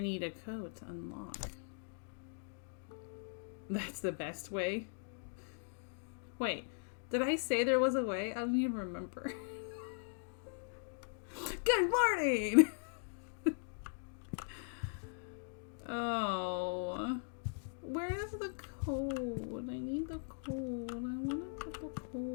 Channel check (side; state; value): right; silent; digital silence